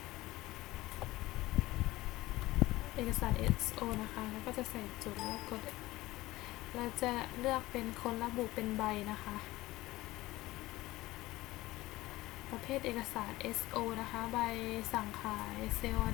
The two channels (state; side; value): quieter; right; 18.3 dB